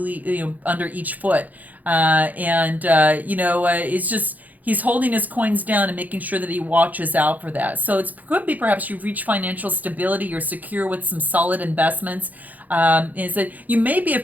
each foot. It's just, he's holding his coins down and making sure that he watches out for that. So it could be perhaps you've reached financial stability, you're secure with some solid investments. Is that you may be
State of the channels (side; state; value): left; late; 0.081 ms